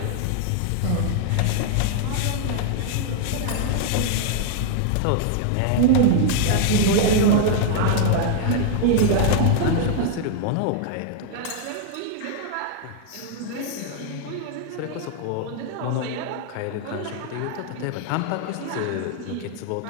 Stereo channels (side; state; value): both; different; correlation 0.00